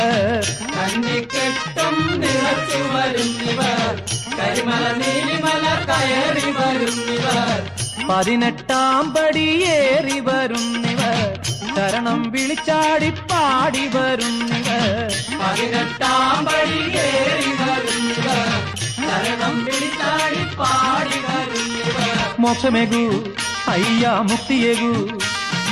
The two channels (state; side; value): identical; both; correlation 1.00